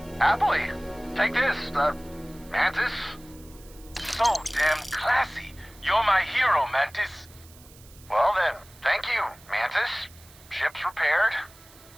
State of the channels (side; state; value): right; noise; hiss, 23 dB below the sound